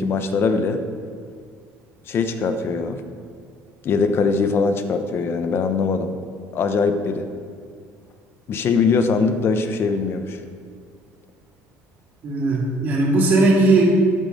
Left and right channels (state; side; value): normal; both; correlation 0.60